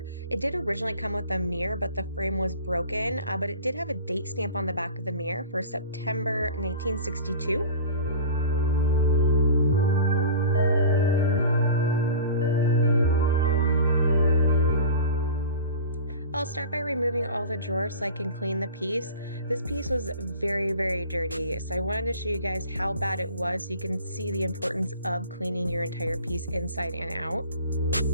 It did originally come with a mirror, but the frame was broken, but it did have a date stamp on the back of the mirror for September 1962. I'll start by removing all the drawers so I can clean the piece. This piece was very dirty, so I wanted to show you guys how bad it was so you can see the importance of cleaning your entire piece inside and out.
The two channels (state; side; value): inverted; both; correlation -0.37